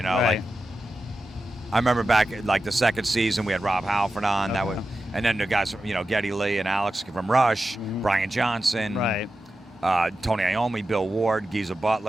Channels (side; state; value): both; normal; correlation 0.92